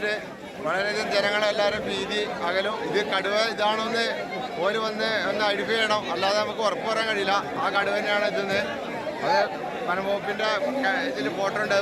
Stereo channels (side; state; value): both; identical; correlation 1.00